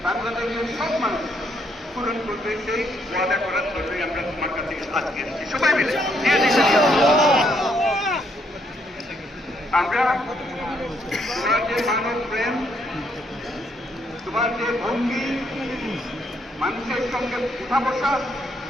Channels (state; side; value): normal; both; correlation 0.73